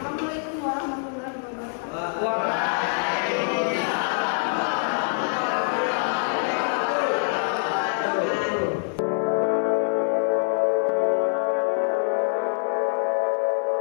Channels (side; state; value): right; silent; digital silence